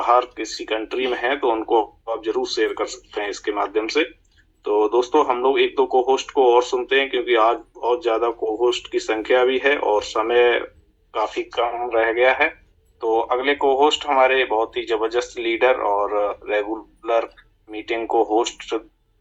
किसी कंट्री में हैं तो उनको आप जरूर शेयर कर सकते हैं इसके माध्यम से। तो दोस्तों हम लोग एक दो को होस्ट को और सुनते हैं, क्योंकि आज बहुत ज्यादा को होस्ट की संख्या भी है और समय काफी कम रह गया है। तो अगले को होस्ट हमारे बहुत ही जबरदस्त लीडर और रेगुलर मीटिंग को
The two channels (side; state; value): both; identical; correlation 1.00